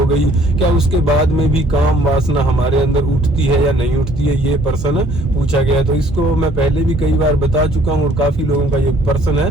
गई, क्या उसके बाद में भी काम वासना हमारे अंदर उठती है या नहीं उठती है, ये प्रश्न पूछा गया। तो इसको मैं पहले भी कई बार बता चुका हूँ और काफी लोगों का ये प्रश्न है,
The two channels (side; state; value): both; normal; correlation 0.59